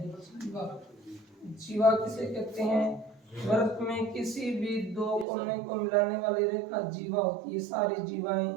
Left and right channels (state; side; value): drops out; left; at 5.2 s